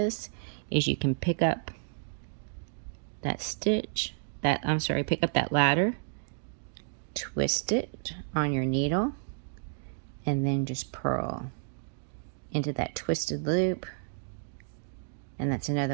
is you can pick up that stitch, pick up that ladder, twist it on your needle, and then just purl into that twisted loop. And that's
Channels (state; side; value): silent; left; digital silence